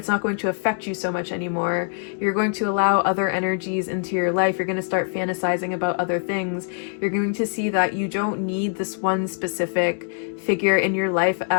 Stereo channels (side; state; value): right; silent; digital silence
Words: not going to affect you so much anymore. You're going to allow other energies into your life. You're going to start fantasizing about other things. You're going to see that you don't need this one specific figure in your life